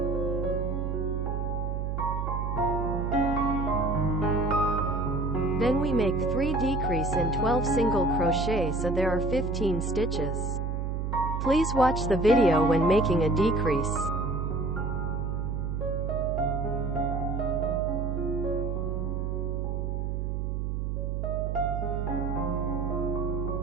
Then we make 3 decrease in 12 single crochet, so there are 15 stitches. Please watch the video when making a decrease.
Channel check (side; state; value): right; noise; hum, 1 dB below the sound